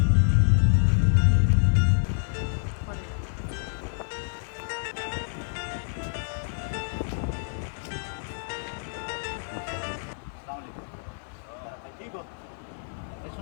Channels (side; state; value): right; silent; 60 dB below the other